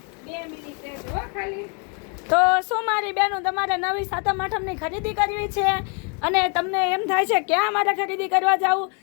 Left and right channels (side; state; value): right; quieter; 37.4 dB